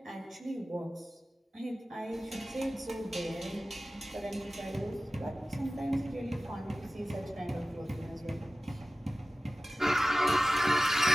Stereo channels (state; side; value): normal; both; correlation 0.96